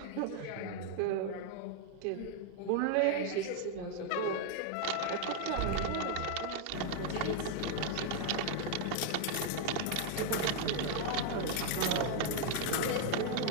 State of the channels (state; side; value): different; both; correlation 0.00